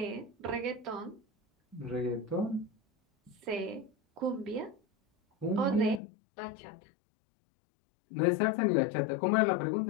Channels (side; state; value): right; drops out; at 6.0 s